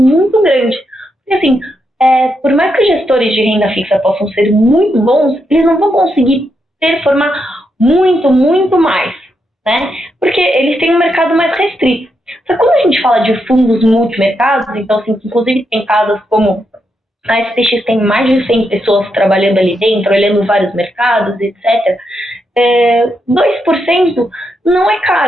grande. Porque, assim, por mais que os gestores de renda fixa possam ser muito bons, eles não vão conseguir performar muito, muito mais, né? Porque eles têm um mercado mais restrito. Só que quando a gente fala de fundos multimercados, então, assim, inclusive tem casas como a SPX tem mais de 100 pessoas trabalhando ali dentro, olhando vários mercados, etc. 2% não é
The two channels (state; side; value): normal; both; correlation 0.82